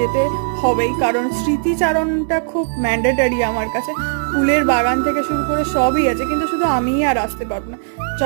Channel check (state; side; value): silent; left; 67 dB below the other